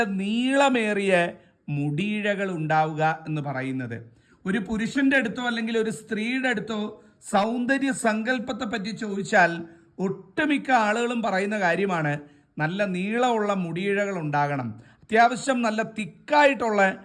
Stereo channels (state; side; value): identical; both; correlation 1.00